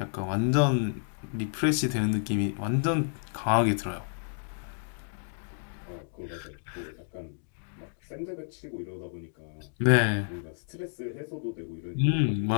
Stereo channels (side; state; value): right; silent; digital silence